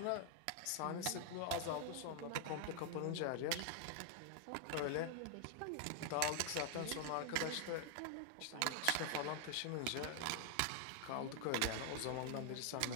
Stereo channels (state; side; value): different; both; correlation 0.00